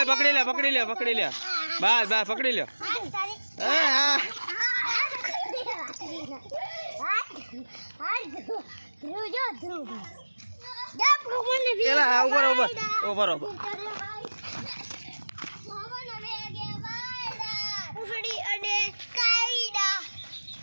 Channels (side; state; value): both; inverted; correlation -1.00